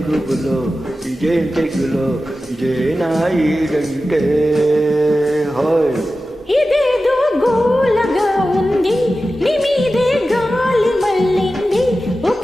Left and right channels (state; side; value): normal; both; correlation 0.94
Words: గుబులో, ఇదేం తెగులో, ఇదేనా ఈడంటే. హాయ్ ఇదేదో గోలగా ఉంది, నీ మీదే గాలి మళ్ళింది.